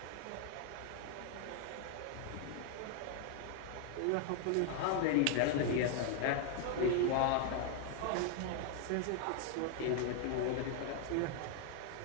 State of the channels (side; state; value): both; different; correlation 0.00